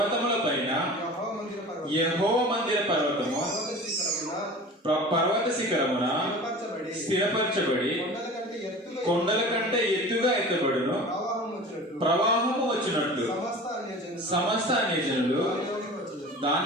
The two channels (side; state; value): both; normal; correlation 0.38